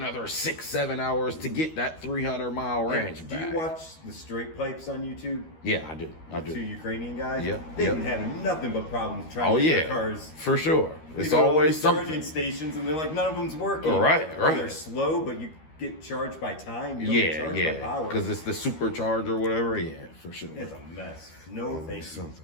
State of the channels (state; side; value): late; right; 13 ms